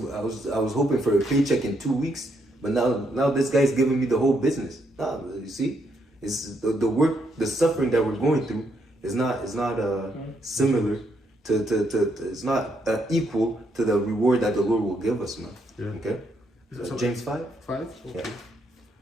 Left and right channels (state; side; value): normal; both; correlation 0.76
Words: hoping for a paycheck in 2 weeks, but now this guy's giving me the whole business. Nah, you see, it's the work, the suffering that we're going through is not similar to it's not equal to the reward that the Lord will give us, man. Yeah. Okay. James 5. Okay.